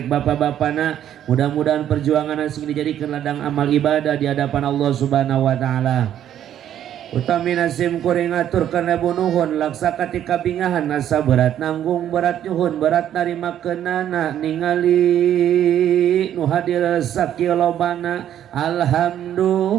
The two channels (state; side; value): quieter; left; 10.7 dB